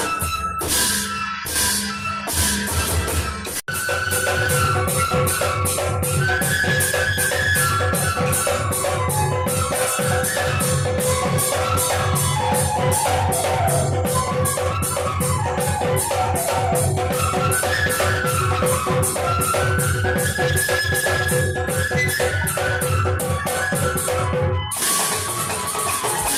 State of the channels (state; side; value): identical; both; correlation 1.00